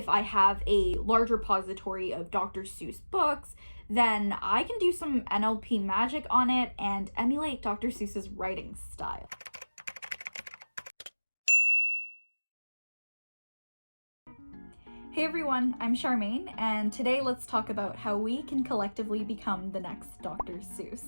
I have a large repository of Dr. Seuss books, then I can do some NLP magic on it and emulate Dr. Seuss's writing style. Hey everyone, I'm Charmaine, and today let's talk about how we can collectively become the next Dr.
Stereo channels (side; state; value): both; inverted; correlation -1.00